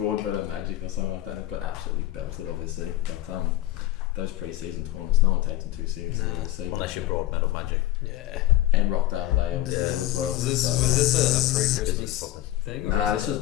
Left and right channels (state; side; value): quieter; right; 15.0 dB